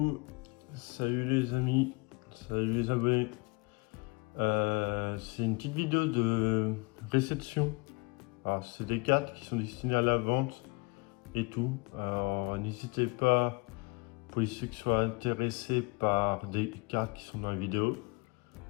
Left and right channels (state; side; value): quieter; right; 28.0 dB